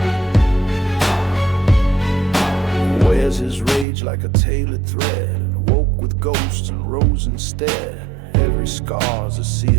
Wears his rage like a tailored thread. Woke with ghosts and rose instead. Every scar's a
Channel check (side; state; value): left; drops out; at 3.9 s